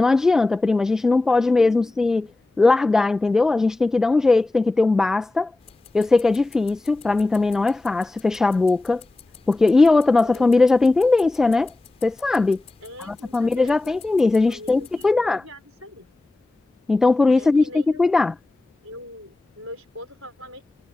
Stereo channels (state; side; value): quieter; right; 3.0 dB